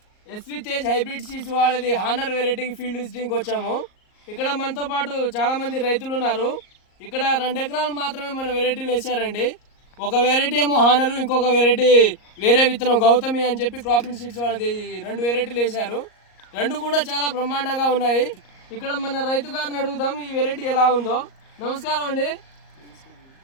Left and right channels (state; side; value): late; right; 38 ms